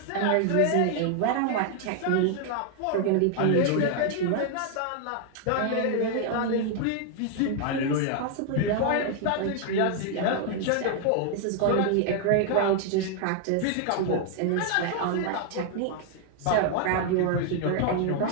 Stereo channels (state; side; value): different; both; correlation 0.00